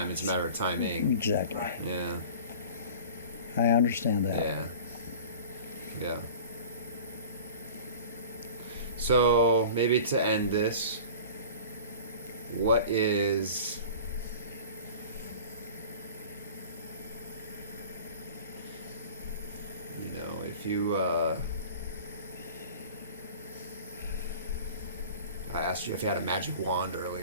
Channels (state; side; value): inverted; both; correlation -0.40